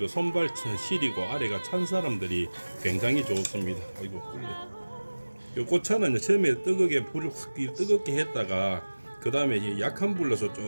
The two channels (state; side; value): inverted; both; correlation -1.00